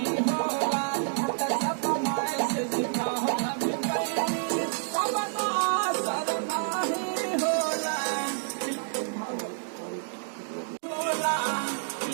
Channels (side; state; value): left; silent; digital silence